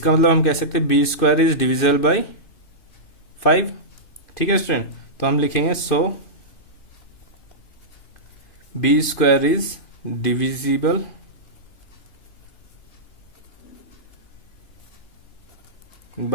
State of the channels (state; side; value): late; right; 2.5 ms